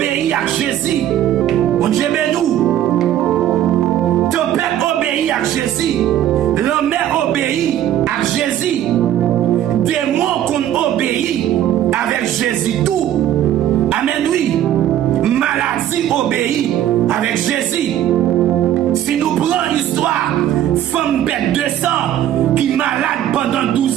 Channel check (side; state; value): left; quieter; 11.6 dB